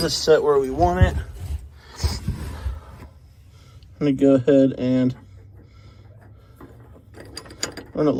set where we want it. I'm going to go ahead and we're going to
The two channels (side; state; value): both; identical; correlation 1.00